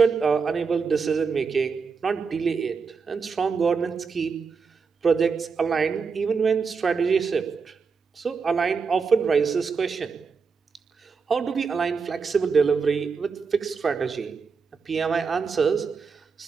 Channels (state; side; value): quieter; left; 5.4 dB